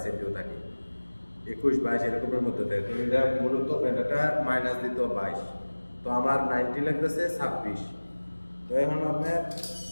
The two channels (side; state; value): both; inverted; correlation -1.00